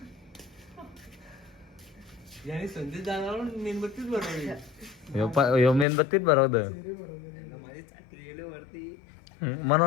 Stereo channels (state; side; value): drops out; right; at 5.9 s